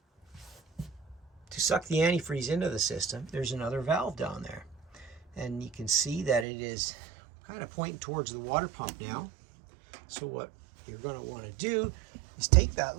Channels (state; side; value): drops out; left; at 6.5 s